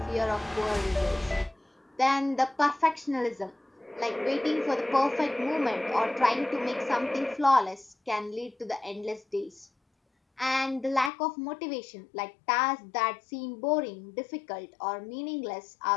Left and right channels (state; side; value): drops out; right; at 11.1 s